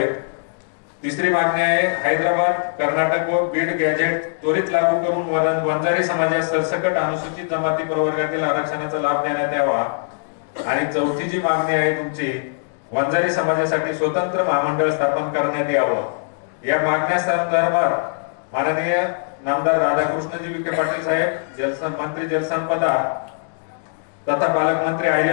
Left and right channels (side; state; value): right; silent; digital silence